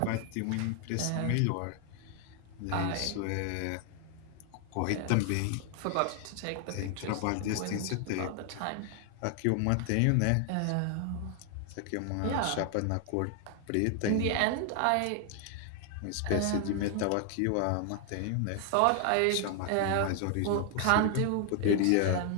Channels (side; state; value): both; different; correlation 0.00